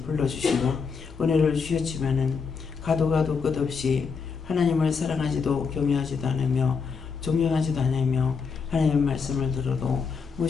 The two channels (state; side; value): quieter; right; 5.5 dB